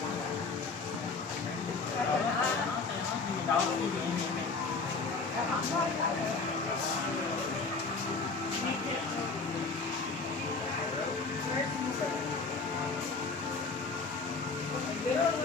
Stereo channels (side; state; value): right; quieter; 4.2 dB